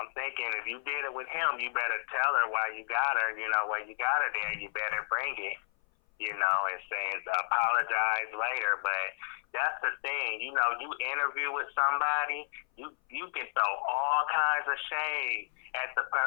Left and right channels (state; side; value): silent; right; 57 dB below the other